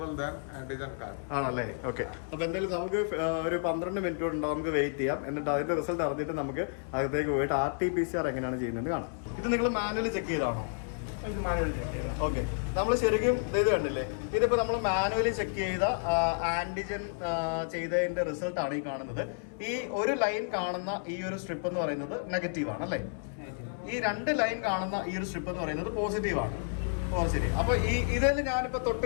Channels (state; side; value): silent; right; 57 dB below the other